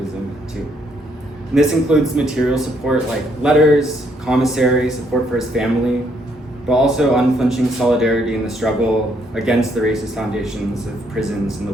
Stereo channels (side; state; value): both; normal; correlation 0.71